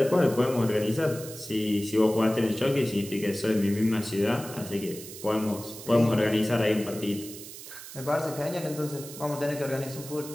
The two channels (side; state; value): right; noise; hiss, 13 dB below the sound